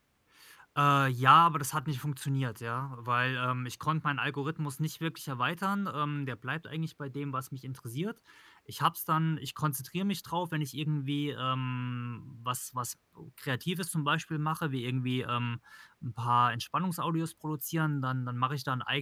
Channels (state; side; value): identical; both; correlation 1.00